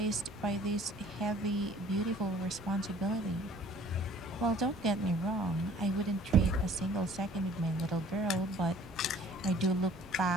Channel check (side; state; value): both; normal; correlation 0.53